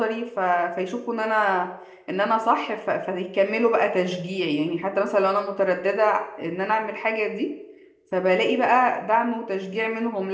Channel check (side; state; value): both; identical; correlation 1.00